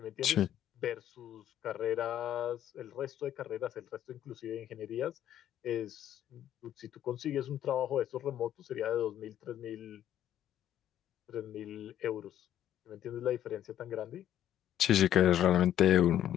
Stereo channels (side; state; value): right; quieter; 11.3 dB